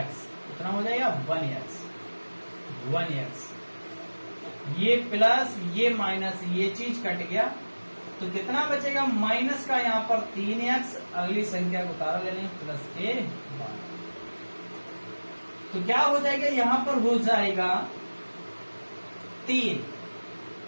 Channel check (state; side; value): inverted; both; correlation -1.00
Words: कितना हो जाएगा 1x, ये प्लस ये माइनस ये चीज कट गया तो कितना बचेगा, माइनस का यहाँ पर 3x, अगली संख्या को उतारा ले लेंगे प्लस के 12, तो क्या हो जाएगा, यहां पर हो जाएगा 3,